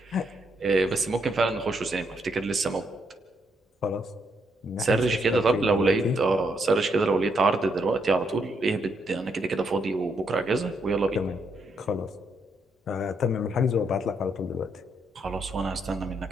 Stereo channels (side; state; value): both; normal; correlation 0.76